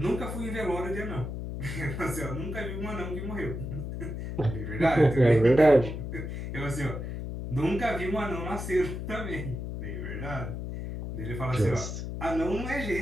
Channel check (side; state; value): left; noise; hum, 5 dB below the sound